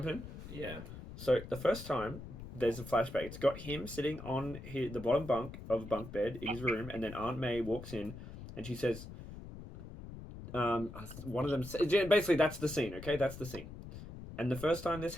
in? Yeah. So the first time there's a flashback. It's got him sitting on the bottom bunk of a bunk bed in his room, and then Aunt May walks in, and she says, one of them, basically that's the scene, okay? That's the scene. And the first time this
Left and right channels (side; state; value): left; noise; rumble, 12 dB below the sound